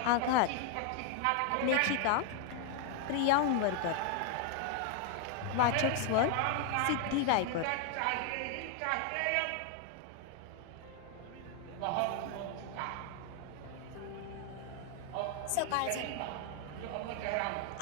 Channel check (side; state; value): both; different; correlation 0.00